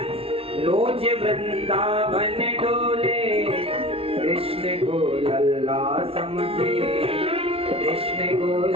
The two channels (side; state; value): left; late; 0.28 ms